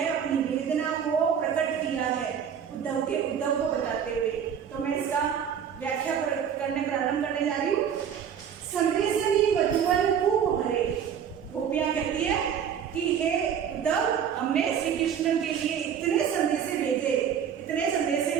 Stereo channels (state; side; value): quieter; left; 8.2 dB